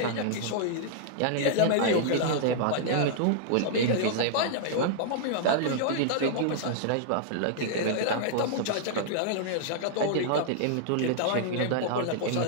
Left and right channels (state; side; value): different; both; correlation -0.01